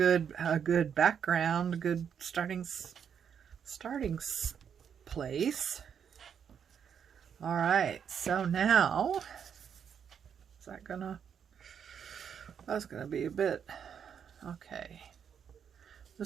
background, a good starting place. All right, so now, is that gonna, that's gonna be a bit, okay.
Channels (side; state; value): left; quieter; 7.7 dB